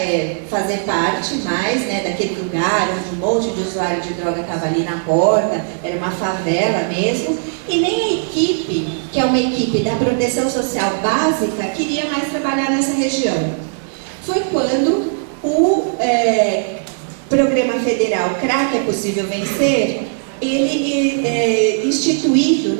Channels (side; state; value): left; silent; 67 dB below the other